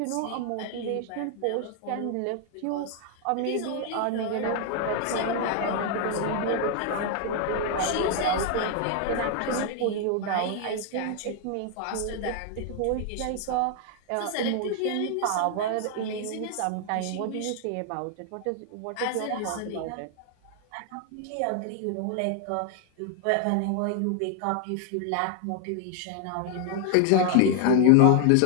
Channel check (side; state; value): both; different; correlation 0.00